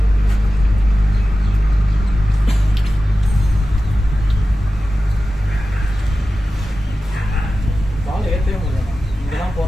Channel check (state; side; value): normal; both; correlation 0.94